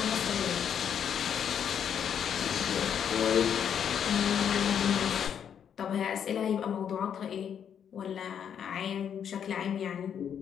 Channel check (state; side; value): quieter; right; 8.4 dB